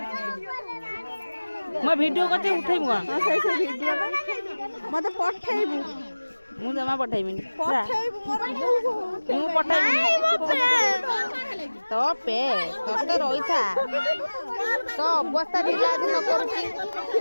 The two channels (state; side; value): inverted; both; correlation -1.00